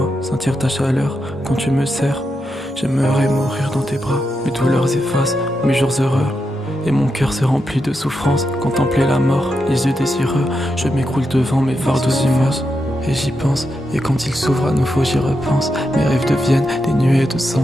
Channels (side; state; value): both; normal; correlation 0.85